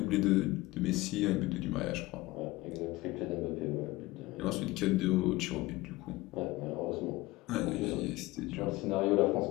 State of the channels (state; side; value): quieter; right; 20.0 dB